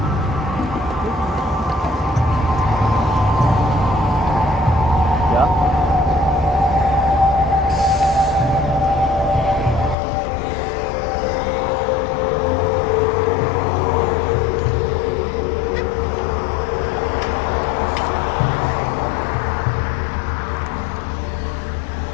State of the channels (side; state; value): right; drops out; at 10.0 s